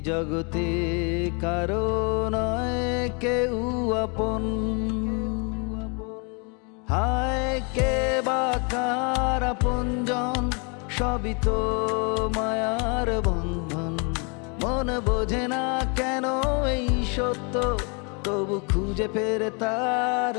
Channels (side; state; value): right; quieter; 34.6 dB